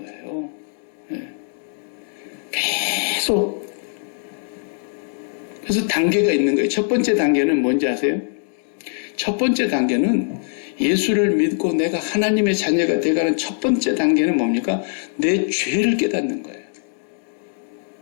네. 계속. 그래서 단계가 있는 거예요. 첫 번째 단계는 뭔지 아세요? 첫 번째 단계는 예수를 믿고 내가 하나님의 자녀가 되어가는 첫 번째 단계는 뭡니까? 내 죄를 깨닫는 거예요.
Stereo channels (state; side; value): silent; right; 64 dB below the other